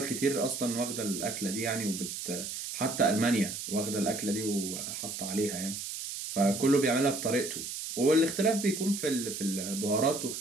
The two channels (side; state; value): right; noise; hiss, 6 dB below the sound